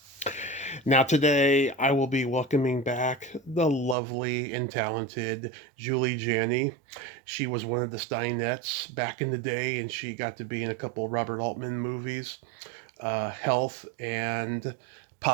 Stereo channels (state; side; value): drops out; left; at 4.0 s